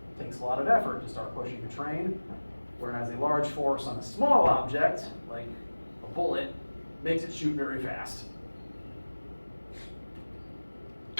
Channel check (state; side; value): inverted; both; correlation -1.00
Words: It takes a lot of effort to start pushing a train, whereas a large force on a small object, like a bullet, makes it shoot very fast.